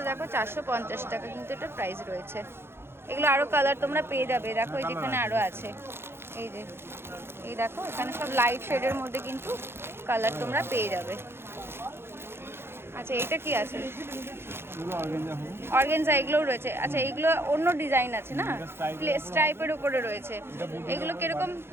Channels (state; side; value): late; left; 0.11 ms